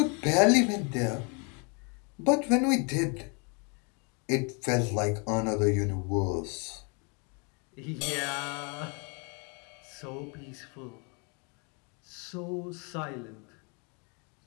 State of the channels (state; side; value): quieter; right; 34.7 dB